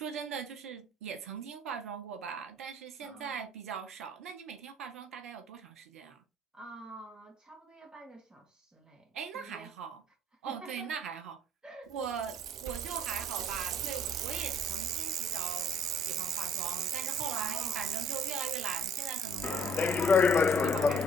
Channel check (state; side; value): normal; both; correlation 0.57